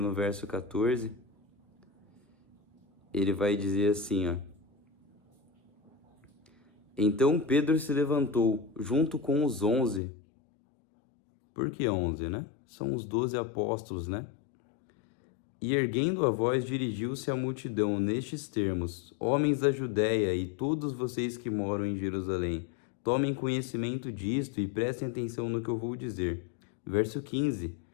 verso 14, ele vai dizer assim, ó: Então Pedro se levantou, junto com os 11. Por que 11, né? São os 12 apóstolos, né? E erguendo a voz, dirigiu-se à multidão nestes termos: Homens da Judéia e todos vocês que moram em Jerusalém, tomem conhecimento disto e prestem atenção no que eu vou dizer. Verso 15:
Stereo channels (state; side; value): drops out; right; at 10.0 s